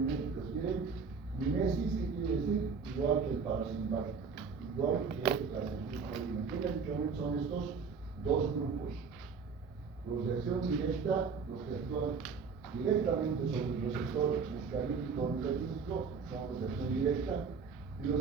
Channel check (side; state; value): left; quieter; 5.4 dB